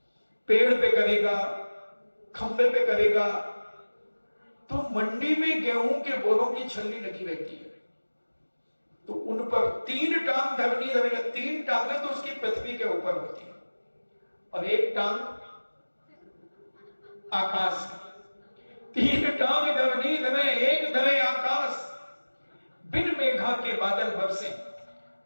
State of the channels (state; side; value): inverted; both; correlation -1.00